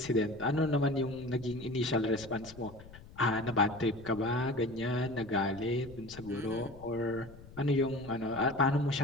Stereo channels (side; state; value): left; noise; rumble, 18 dB below the sound